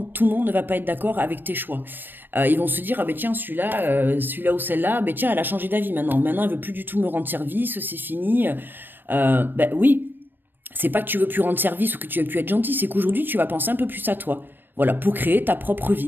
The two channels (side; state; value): left; late; 0.094 ms